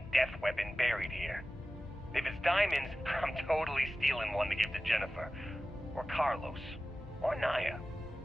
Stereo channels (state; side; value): normal; both; correlation 0.96